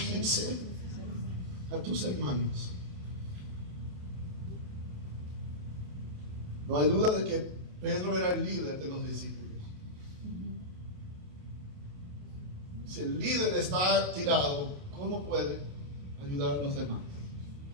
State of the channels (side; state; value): left; late; 27 ms